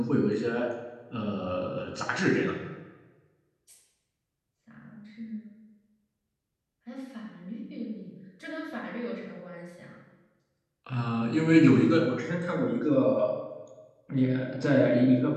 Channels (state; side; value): identical; both; correlation 1.00